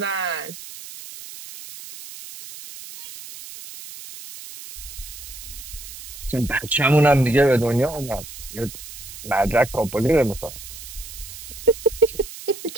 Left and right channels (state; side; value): noise; right; hiss, 13 dB below the sound